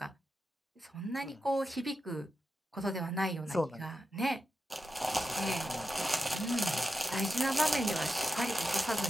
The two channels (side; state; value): both; normal; correlation 0.90